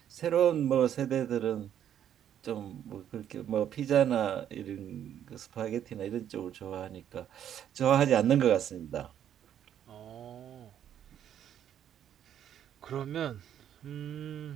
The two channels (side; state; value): left; quieter; 10.0 dB